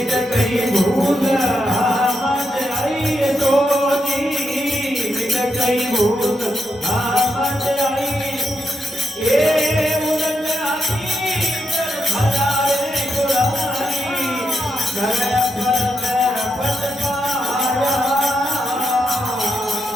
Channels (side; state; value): both; normal; correlation 0.83